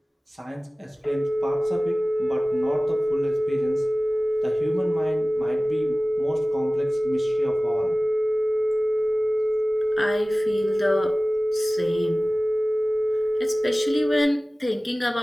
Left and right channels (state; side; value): normal; both; correlation 0.97